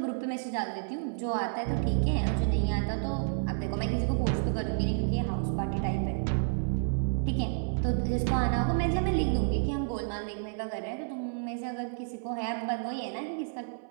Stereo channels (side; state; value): left; silent; 58 dB below the other